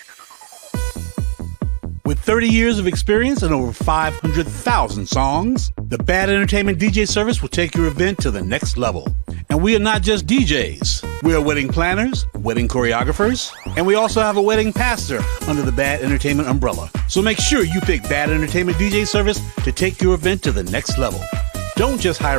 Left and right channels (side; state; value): left; silent; digital silence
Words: With 30 years of experience and over 500,000 songs, the Bad Entertainment DJ service will take your event to the next level. And we are not just DJs. We are wedding planners, wedding choreographers, and we also have a wedding pastor under the Bad Entertainment umbrella. So make sure you pick Bad Entertainment DJ service to take your event to the next level. Don't just